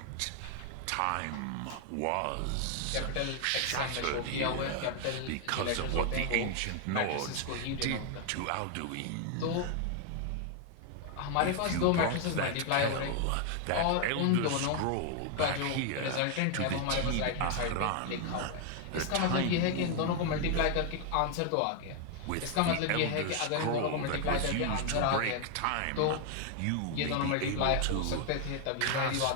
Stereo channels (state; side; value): different; both; correlation 0.00